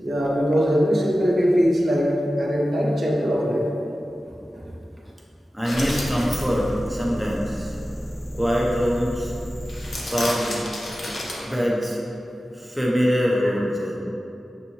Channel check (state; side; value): normal; both; correlation 0.94